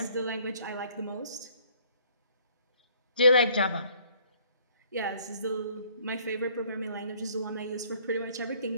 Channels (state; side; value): inverted; both; correlation -0.60